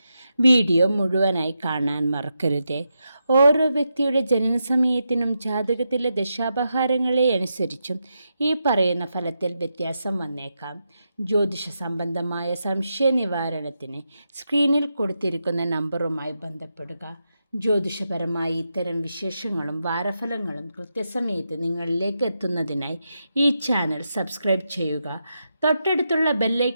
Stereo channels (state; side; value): inverted; both; correlation -0.86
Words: വീഡിയോ മുഴുവനായി കാണാൻ മറക്കരുതേ. ഓരോ വ്യക്തിയുടെ ജനനസമയത്തിനും ജാതകത്തിലെ ദശാപഹാരങ്ങളെ അനുസരിച്ചും ഈ പറയുന്ന ഫലത്തിൽ വ്യത്യാസം വന്നേക്കാം. ജ്യോതിഷ സംബന്ധമായ സംശയ നിവാരണത്തിന് സ്ക്രീനിൽ കൊടുത്തിരിക്കുന്ന നമ്പറുമായി ബന്ധപ്പെടുക. ജ്യോതിഷപരമായി ഇത്തരം വിശേഷങ്ങളും വാരഫലങ്ങളും കൃത്യസമയത്ത് നിങ്ങളിലേക്ക് എത്തുന്നതിനായി ഈ ചാനൽ സബ്സ്ക്രൈബ് ചെയ്യുക. തൊട്ടടുത്തുള്ള